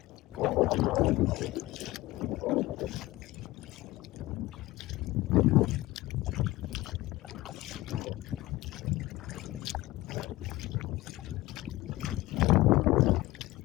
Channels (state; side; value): quieter; right; 18.2 dB